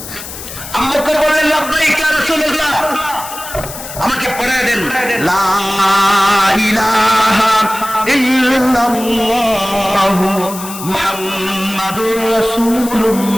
আবু বকর বললেন লাব্বাইক ইয়া রাসূলুল্লাহ, আমাকে পড়ায় দেন লা ইলাহা ইল্লাল্লাহু মুহাম্মাদুর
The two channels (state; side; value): noise; left; hiss, 11 dB below the sound